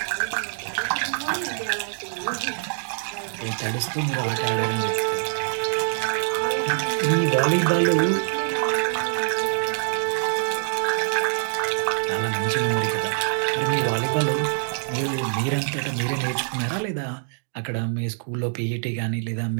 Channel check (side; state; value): left; silent; digital silence